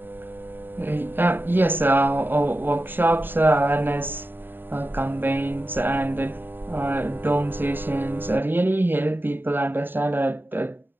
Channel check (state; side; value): late; left; 0.095 ms